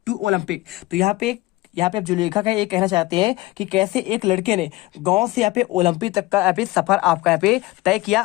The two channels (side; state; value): right; quieter; 19.8 dB